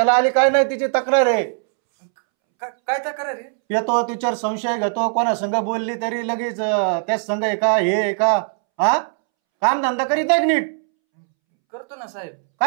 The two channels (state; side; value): silent; left; 66 dB below the other